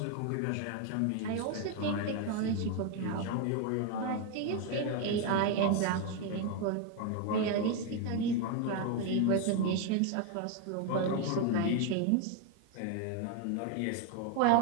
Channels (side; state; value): both; different; correlation 0.01